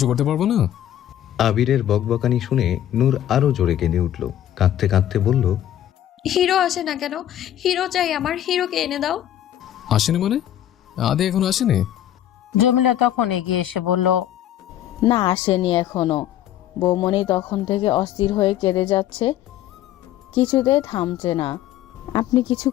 করতে পারবো না। আবিরের বকবকানি শুনে নূর আরো জোরে কেঁদে উঠল, কাঁদতে কাঁদতে বলল, হিরো আসে না কেন? হিরো চাই আমার, হিরোকে এনে দাও। আসেনি মানে? আদি এখন আসেনি? জমিলা তখন এগিয়ে এসে বলল, না, আসেনি এখনো। বৌমনি তখন থেকে অস্থির হয়ে কেঁদে যাচ্ছে, কিছুতেই থামছে না। আপনি কিছু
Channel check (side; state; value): right; quieter; 11.7 dB